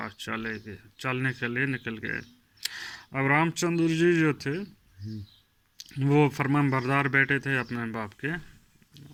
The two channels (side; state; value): both; identical; correlation 1.00